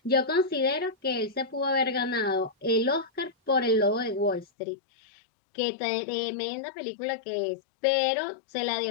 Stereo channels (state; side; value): drops out; right; at 4.5 s